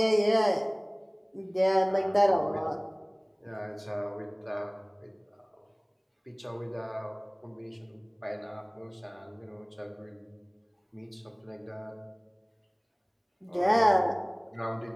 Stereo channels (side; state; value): both; identical; correlation 1.00